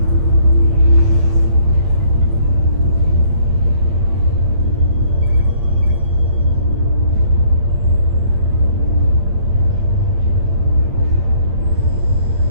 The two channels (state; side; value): late; left; 8.8 ms